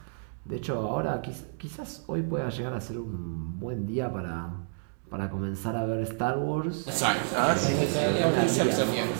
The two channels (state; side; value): silent; left; digital silence